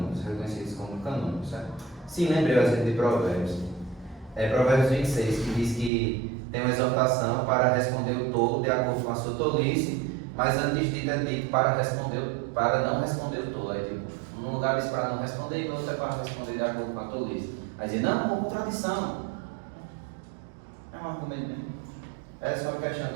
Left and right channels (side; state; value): left; drops out; at 5.9 s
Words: reconhecidos como canônicos, certo? Sim, lembrei o exemplo de Provérbios. Provérbios 26, que diz que tem uma exortação para responder o tolo de acordo com a sua tolice, mas antes de é dito para não responder o tolo. Tipo, num lugar diz para não responder e no outro é para responder de acordo com a tolice. Aí diz, não, uma contradição. É um argumento mesmo. É só uma questão